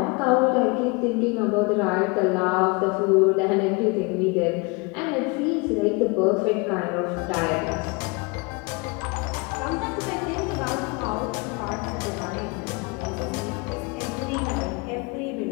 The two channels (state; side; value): quieter; right; 28.6 dB